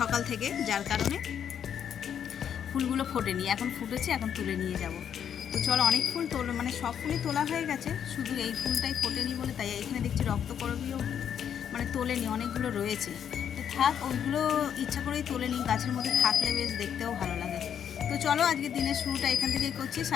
থেকে, যার কারণে ফুলগুলো ফোটেনি। এখন ফুটেছে, এখন তুলে নিয়ে যাব। তো চলো, অনেক ফুল মানে সব ফুলই তোলা হয়ে গেছে, শুধু এই ফুলটাই ফোটেনি বলে তাই এখানে দেখছি রক্তকরবীও মানে তোলেনি, অনেকগুলো রয়েছে। তো থাক, ওইগুলো ইচ্ছা করেই তোলেনি, গাছের মধ্যে থাকলে বেশ দেখতেও ভালো লাগে। তো চলো, আজকে দিনের শুরুটা এখান থেকেই করছি।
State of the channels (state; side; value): quieter; right; 8.7 dB